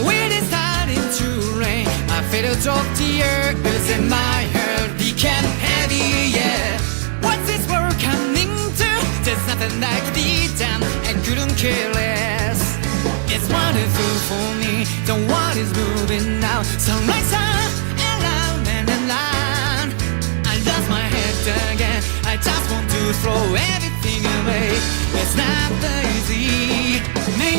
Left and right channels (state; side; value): silent; left; digital silence